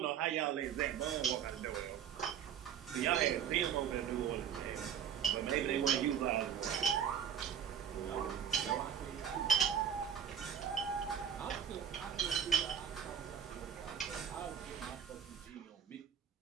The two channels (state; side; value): quieter; left; 8.5 dB